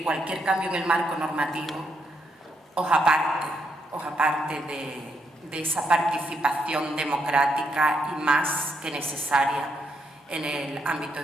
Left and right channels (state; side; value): normal; both; correlation 0.78